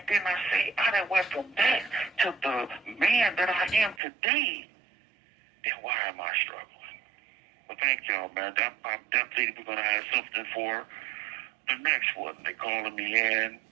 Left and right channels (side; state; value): left; drops out; at 4.0 s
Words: then I done went from that to the man that I am today. Then why am I struggling? Well, thank y'all, man. I'm definitely going to have something for the next one. They calling me in.